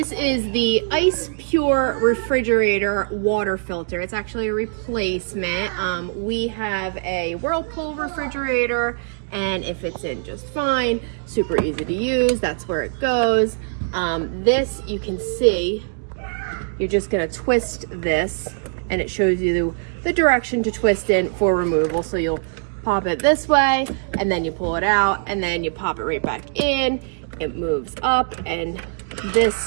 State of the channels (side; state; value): left; silent; digital silence